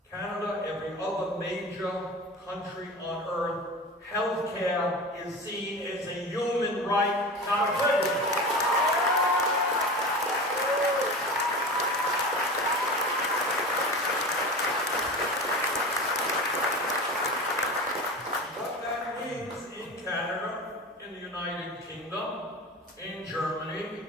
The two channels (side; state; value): both; normal; correlation 0.31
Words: Canada, every other major country on earth, healthcare is seen as a human right, not a privilege. In Germany,